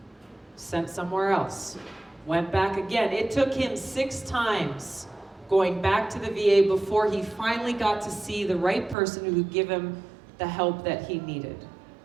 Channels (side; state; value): left; drops out; at 9.0 s